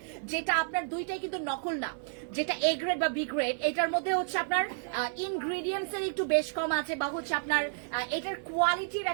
যেটা আপনার দুইটাই কিন্তু নকল না, যেটা এ গ্রেড বা বি গ্রেড, এটার মধ্যে হচ্ছে আপনার ইনগ্রিডিয়েন্টস এর একটু বেশ কম আছে, বা হচ্ছে আপনার এটার কোয়ালিটির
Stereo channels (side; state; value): left; silent; digital silence